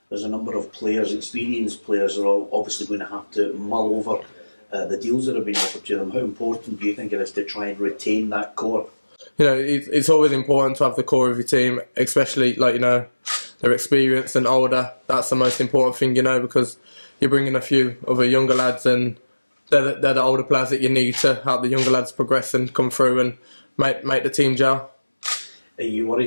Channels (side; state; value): both; inverted; correlation -1.00